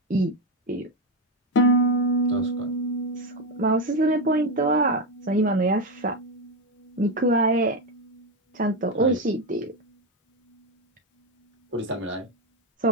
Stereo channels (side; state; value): both; normal; correlation 0.10